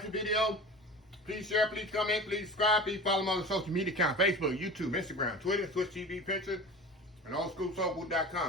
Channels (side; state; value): both; normal; correlation 0.35